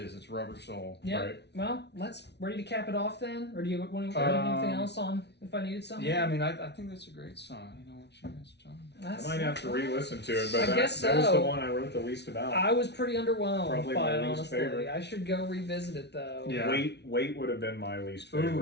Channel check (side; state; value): right; late; 0.50 ms